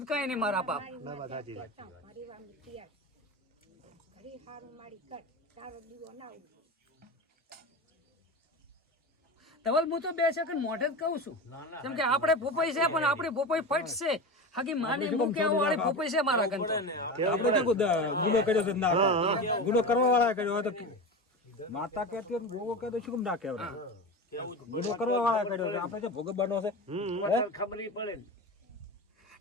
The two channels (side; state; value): both; normal; correlation 0.26